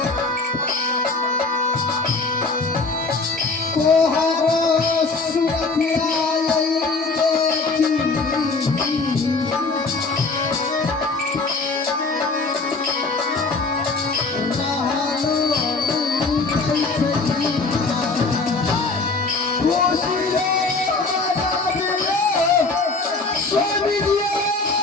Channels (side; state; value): right; quieter; 3.8 dB